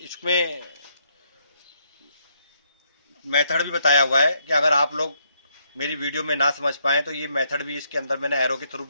इसमें मेथड भी बताया हुआ है कि अगर आप लोग मेरी वीडियो में ना समझ पाए तो ये मेथड भी इसके अंदर मैंने एरो के थ्रू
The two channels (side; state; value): both; inverted; correlation -0.75